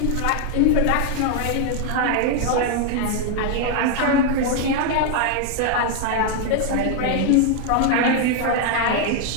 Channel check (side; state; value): both; different; correlation 0.00